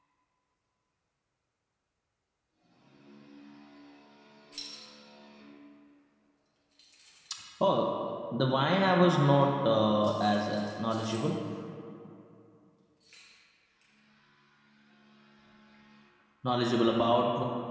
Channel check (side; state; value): both; identical; correlation 1.00